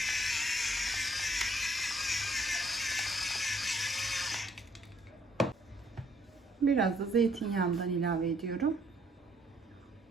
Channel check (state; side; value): normal; both; correlation 0.66